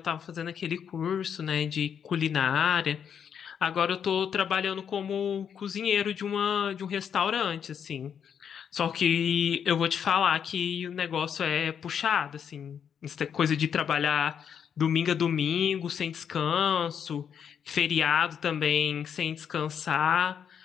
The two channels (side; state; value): right; quieter; 7.9 dB